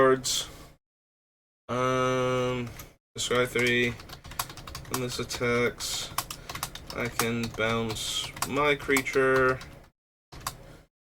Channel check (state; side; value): identical; both; correlation 1.00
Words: Scry 3, when this attacks, I can bounce my creature